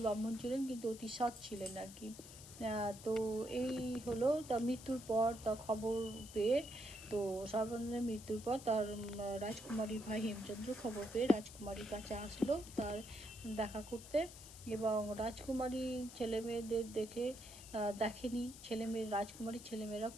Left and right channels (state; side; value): noise; left; hiss, 15 dB below the sound